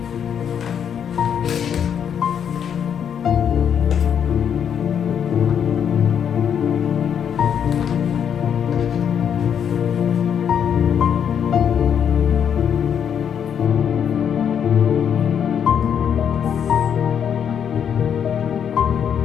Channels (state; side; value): quieter; right; 8.2 dB